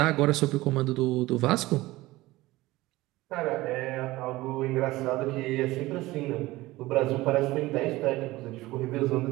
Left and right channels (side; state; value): left; quieter; 18.8 dB